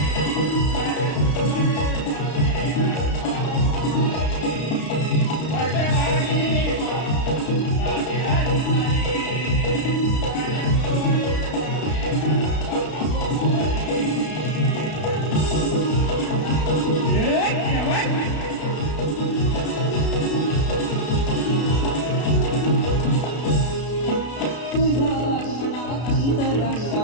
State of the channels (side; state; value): right; late; 32 ms